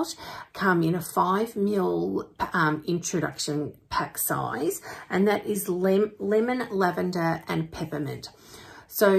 come in a 5 ml introduction pack size, and that is lemon, lavender and peppermint.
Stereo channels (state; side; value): identical; both; correlation 1.00